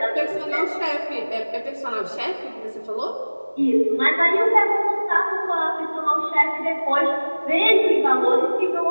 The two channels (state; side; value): inverted; both; correlation -1.00